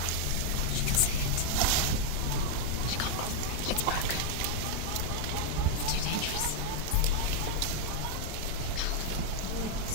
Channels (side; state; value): both; different; correlation 0.00